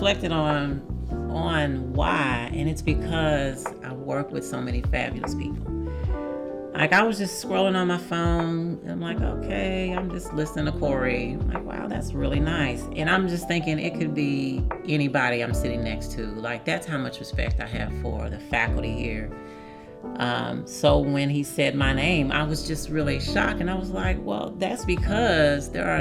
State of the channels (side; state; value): both; identical; correlation 1.00